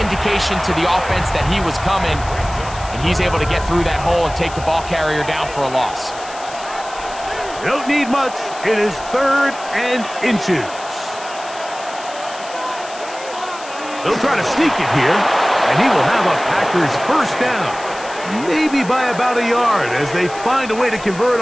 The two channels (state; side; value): noise; left; hiss, 16 dB below the sound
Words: indication to the offense that he was coming, and he's able to get through that hole and take the ball carrier down for a loss. Don't need much. It is 3rd and inches. They'll try to sneak it here, and he will have a Packers first down. Maybe by about a yard as they find a way to convert